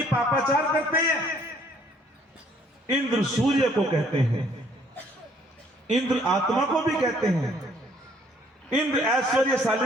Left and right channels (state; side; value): normal; both; correlation 0.62